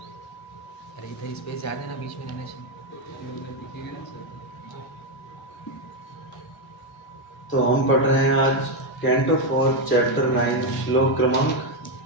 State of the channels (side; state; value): both; normal; correlation 0.05